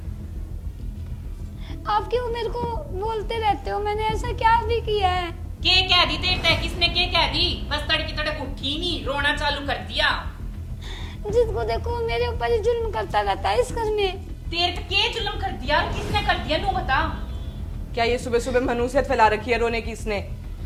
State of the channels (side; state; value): both; identical; correlation 1.00